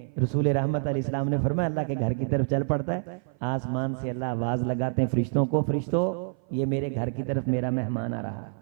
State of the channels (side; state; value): left; silent; 55 dB below the other